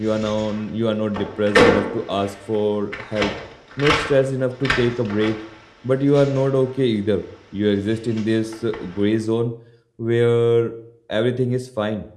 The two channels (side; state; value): both; identical; correlation 1.00